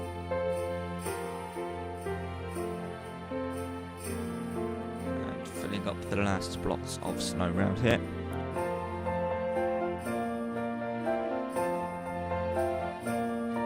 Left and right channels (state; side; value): identical; both; correlation 1.00